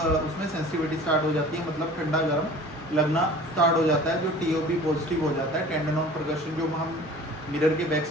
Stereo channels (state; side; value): normal; both; correlation 0.44